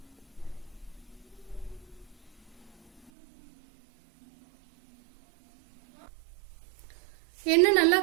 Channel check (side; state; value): left; drops out; at 3.1 s